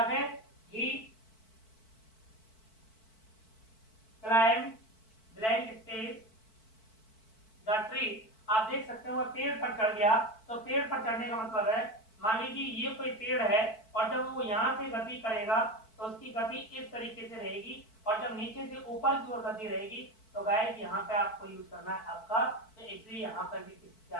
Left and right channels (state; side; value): late; right; 4.5 ms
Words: फिर he climbed blank space the tree। आप देख सकते हो वो पेड़ पर चढ़ गया, तो पेड़ पर चढ़ने का मतलब है, मान लीजिए ये कोई पेड़ है और जब वो यहाँ से गति करेगा तो उसकी गति इस तरीके से रहेगी, और जब नीचे से ऊपर की ओर गति रहेगी तो गाइस यहाँ पे आपको यूज करना है आपका, तो इसलिए यहाँ पर भी किसका